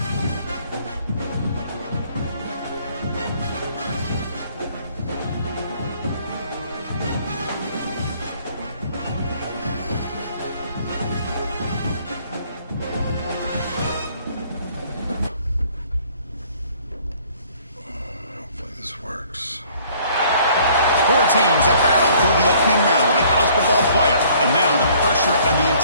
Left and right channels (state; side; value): inverted; both; correlation -0.58